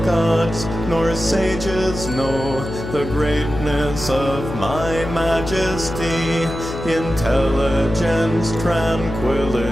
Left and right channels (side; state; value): left; noise; hum, 8 dB below the sound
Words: gods nor sages know the greatness of my majesty, intelligence,